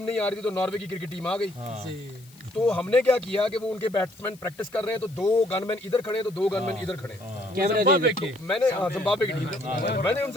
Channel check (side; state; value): left; noise; hiss, 25 dB below the sound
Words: नहीं आ रही थी, तो नॉर्वे की क्रिकेट टीम आ गई। तो हमने क्या किया कि वो उनके बैट्समैन प्रैक्टिस कर रहे हैं, तो 2 गनमैन इधर खड़े हैं, तो 2 गनमैन इधर खड़े हैं। कैमरे तो मैंने जिम्बाब्वे की टीम, मैंने